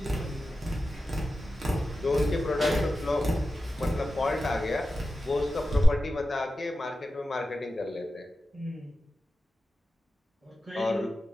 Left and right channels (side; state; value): both; normal; correlation 0.93